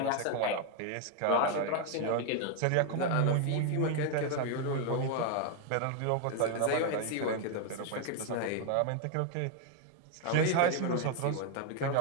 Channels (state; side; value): different; both; correlation 0.01